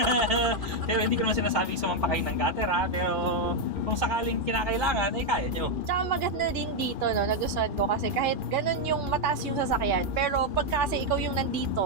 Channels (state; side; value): late; left; 2.4 ms